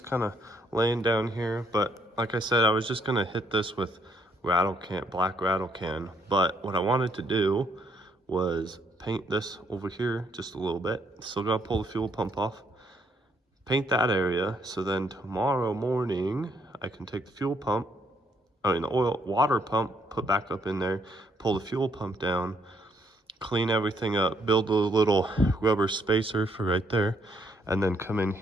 kind of laying down here. But like I said, I was just gonna hit this with black rattle can. But what I wanted to do was paint this over here just a little bit. Still gotta pull the fuel pump off. Paint that area, so then tomorrow morning I can take the fuel pump, the water pump, put back up in there, pull the fuel pump down, clean everything up, build a little rubber spacer for right there, and then come in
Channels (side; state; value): both; normal; correlation 0.70